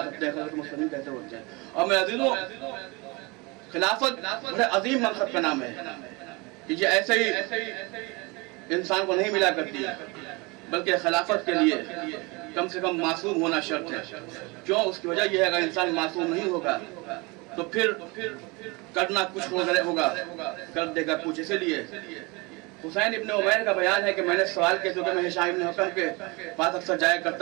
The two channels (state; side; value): quieter; left; 26.6 dB